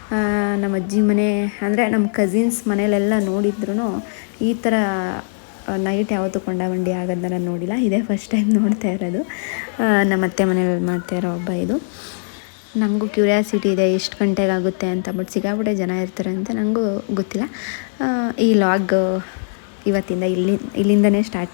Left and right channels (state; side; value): silent; right; 59 dB below the other